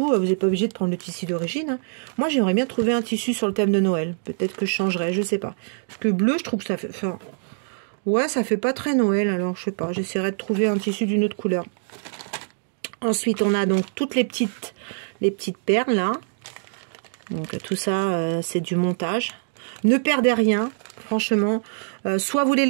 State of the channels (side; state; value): left; silent; digital silence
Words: vous n'êtes pas obligé de prendre le tissu d'origine. Hein. Moi, j'aimerais bien trouver un tissu sur le thème de Noël. Peut-être que je changerai, je sais pas. Parce que bleu, je trouve que ça fait... Enfin, ouais, ça fait pas très Noël. Alors, je sais pas. J'essaierai de trouver un tissu d'une autre couleur. Ensuite, on a donc toutes les petites perles, là. Donc tout ça, c'est du montage. Ne perdez rien, franchement. Soit vous les